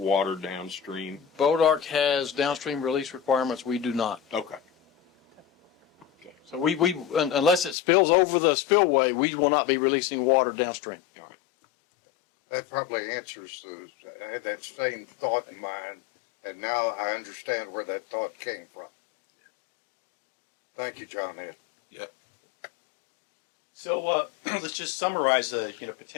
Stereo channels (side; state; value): right; drops out; at 7.8 s